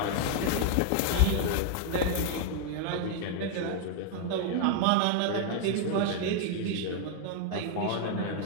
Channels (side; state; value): both; different; correlation 0.00